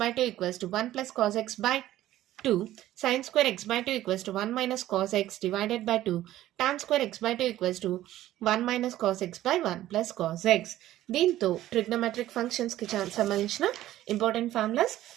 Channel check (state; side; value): quieter; left; 14.1 dB